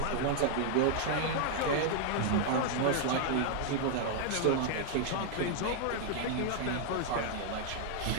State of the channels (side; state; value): both; different; correlation 0.00